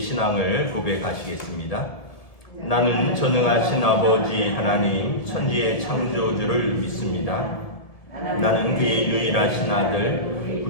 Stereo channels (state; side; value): late; right; 1.7 ms